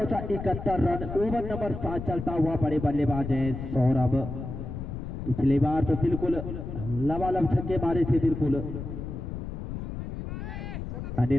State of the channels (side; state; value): left; noise; rumble, 7 dB below the sound